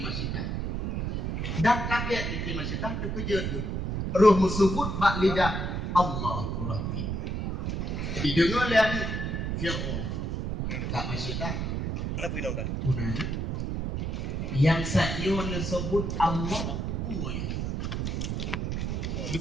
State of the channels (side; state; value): right; noise; rumble, 1 dB below the sound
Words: Masyitah. Dan kaget Siti Masyitah terkejut tu. Roh musubut bak lidah Allahu Rabbi. Didengar oleh Fir'aun. Kak Masyitah. Kenapa ini dah? Punanya. Yang saya menyebut Allah uang.